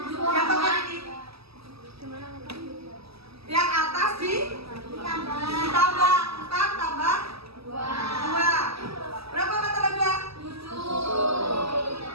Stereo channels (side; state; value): left; late; 0.77 ms